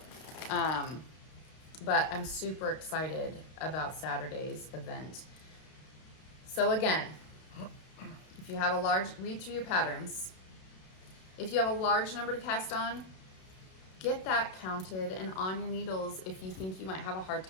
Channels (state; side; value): late; right; 32 ms